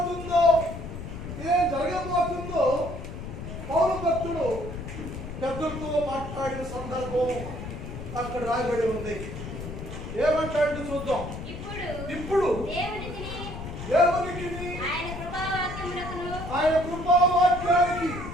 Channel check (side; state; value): left; noise; rumble, 8 dB below the sound